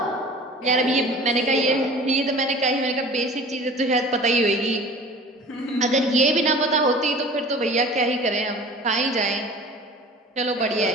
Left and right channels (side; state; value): both; normal; correlation 0.43